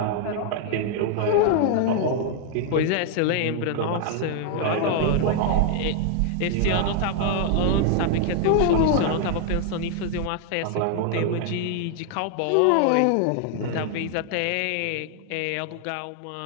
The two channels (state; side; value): different; both; correlation 0.00